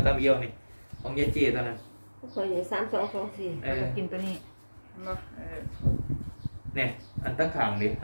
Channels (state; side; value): inverted; both; correlation -1.00